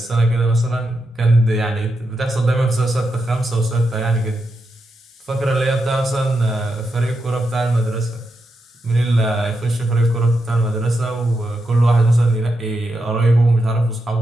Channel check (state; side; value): normal; both; correlation 0.85